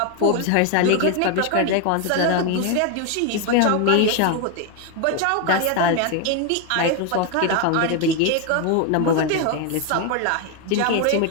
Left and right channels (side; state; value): both; different; correlation 0.01